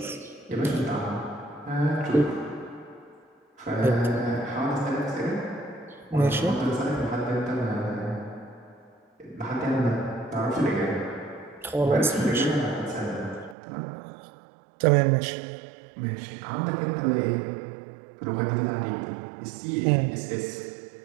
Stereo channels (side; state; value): left; drops out; at 13.6 s